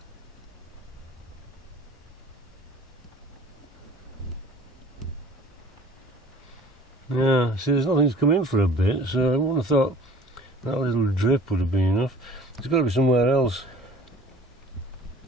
Yeah, see, there's nothing's come in for a bit, so I wouldn't have thought that little drip would have been enough. It's got to be somewhere else.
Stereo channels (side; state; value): both; normal; correlation 0.49